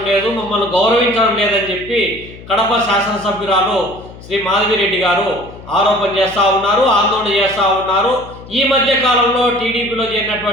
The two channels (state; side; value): noise; left; hum, 17 dB below the sound